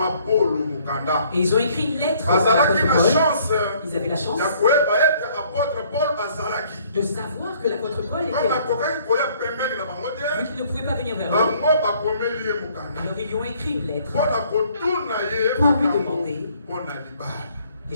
Et ils ont écrit une lettre. Ils avaient la chance de savoir que l'apôtre Paul était là. Vu qu'il ne pouvait pas venir vers eux, alors ils lui ont écrit une lettre pour lui demander les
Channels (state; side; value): inverted; both; correlation -0.61